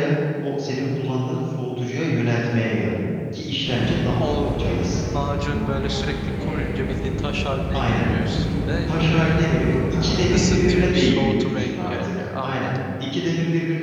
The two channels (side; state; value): both; identical; correlation 1.00